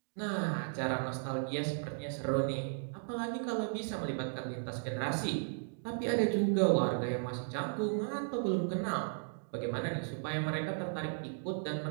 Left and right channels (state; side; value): silent; left; digital silence